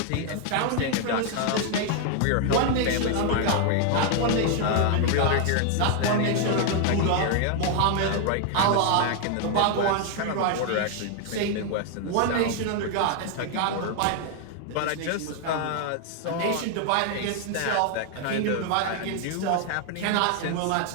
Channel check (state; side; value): different; both; correlation 0.00